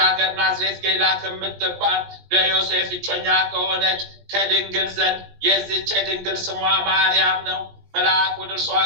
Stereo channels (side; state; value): left; late; 18 ms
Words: ሀገር ናዝሬት ገሊላ ከምትባል ለዮሴፍ እጮኛ ከሆነች ከድንግል ዘንድ የዚች ድንግል ስሟ ማርያም ነው። መልአክ ወደ እርሷ